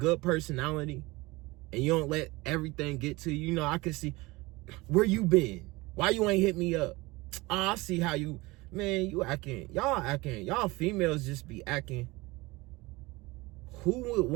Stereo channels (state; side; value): quieter; left; 22.2 dB